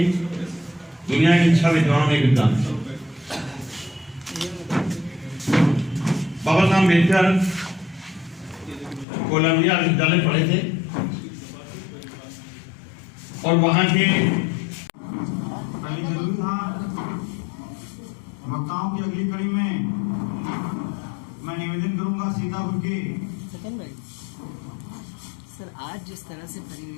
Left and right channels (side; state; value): right; drops out; at 9.1 s